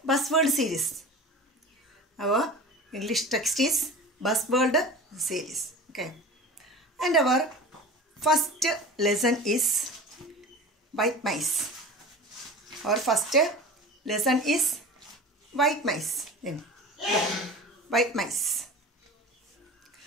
buzzword series. Our English text is buzzword series. Okay. And our first lesson is white mice. Our first lesson is white mice. Then white mice.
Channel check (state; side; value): normal; both; correlation 0.35